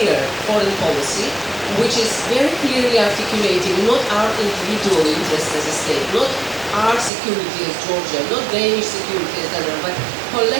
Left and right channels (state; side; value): drops out; left; at 7.1 s